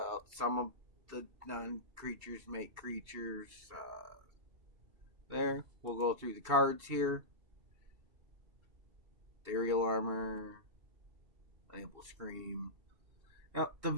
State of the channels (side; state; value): left; late; 2.7 ms